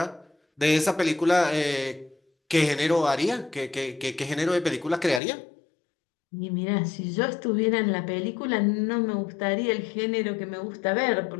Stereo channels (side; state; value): right; drops out; at 5.2 s